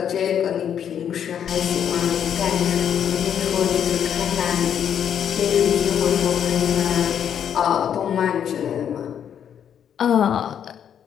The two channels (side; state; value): right; quieter; 8.8 dB